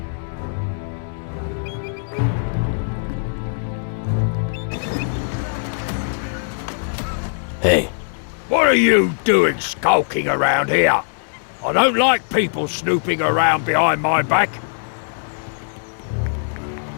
Hey. What are you doing skulking around here? I don't like people snooping around behind my back.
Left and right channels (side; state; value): right; silent; digital silence